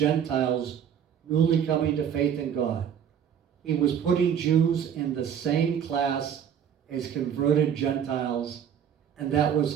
newly coming to faith in God. He was putting Jews in the same class as converted Gentiles, and that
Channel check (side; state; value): left; quieter; 8.5 dB